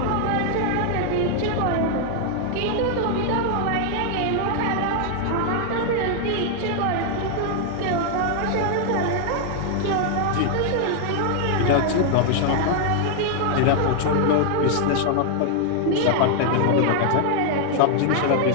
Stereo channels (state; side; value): different; both; correlation 0.00